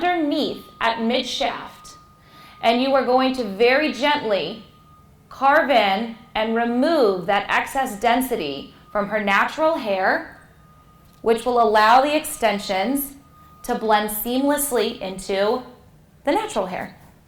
at mid-shaft, and you are going to very gently carve in and remove that excess density from her natural hair, which will allow the extensions to blend seamlessly into the natural hair.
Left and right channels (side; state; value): both; identical; correlation 1.00